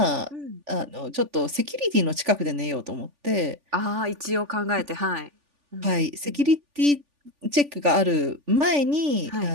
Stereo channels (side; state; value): left; late; 3.4 ms